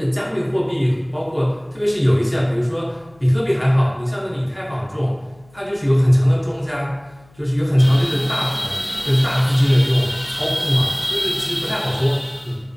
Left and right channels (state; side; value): noise; left; hum, 30 dB below the sound